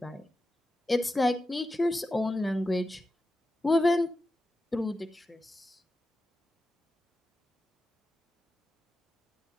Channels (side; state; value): both; normal; correlation 0.91